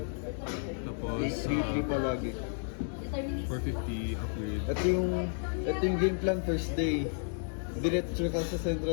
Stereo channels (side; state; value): right; silent; 56 dB below the other